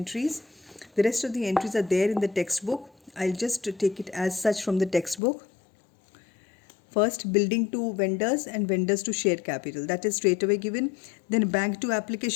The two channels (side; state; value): right; drops out; at 5.2 s